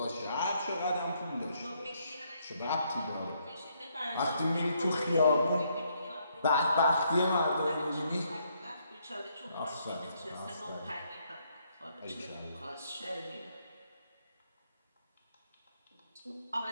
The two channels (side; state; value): both; inverted; correlation -0.72